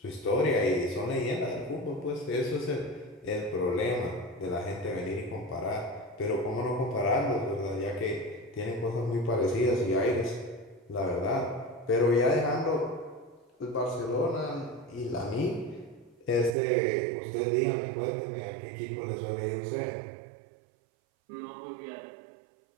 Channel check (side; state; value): left; drops out; at 16.6 s